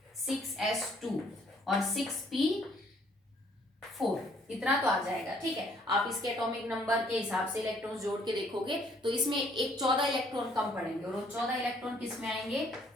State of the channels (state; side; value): normal; both; correlation 0.63